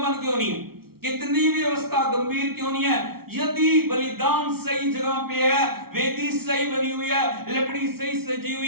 क्यों नहीं है, कितनी भी अवस्था गंभीर क्यों नहीं है, यदि बलिदान सही जगह पे है, वेदी सही बनी हुई है, लकड़ी सही सजी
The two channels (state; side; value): late; left; 0.94 ms